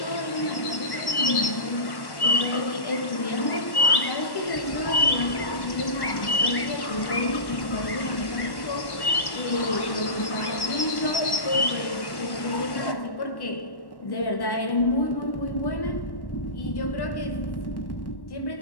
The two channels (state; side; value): late; right; 1.1 ms